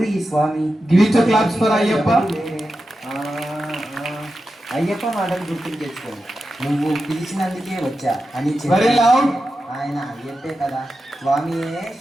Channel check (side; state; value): both; normal; correlation 0.91